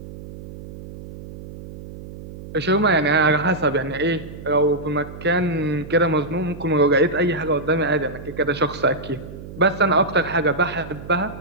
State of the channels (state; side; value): noise; right; hum, 14 dB below the sound